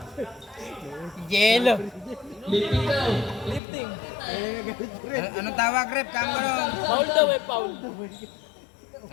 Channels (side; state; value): right; drops out; at 3.6 s